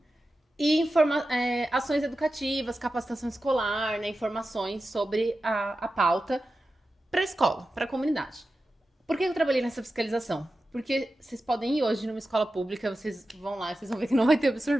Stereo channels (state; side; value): normal; both; correlation 0.93